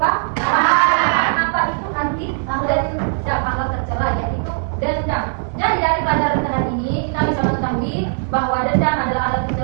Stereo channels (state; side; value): silent; left; 58 dB below the other